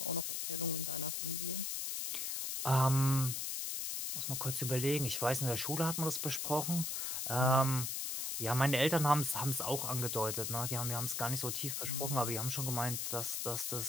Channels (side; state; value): left; noise; hiss, 2 dB below the sound